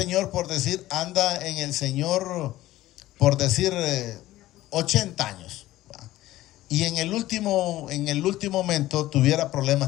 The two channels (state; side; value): quieter; right; 15.8 dB